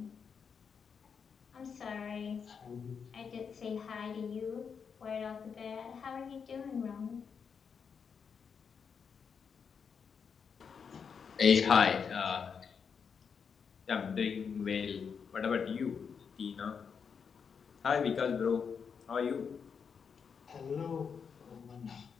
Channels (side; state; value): right; quieter; 6.4 dB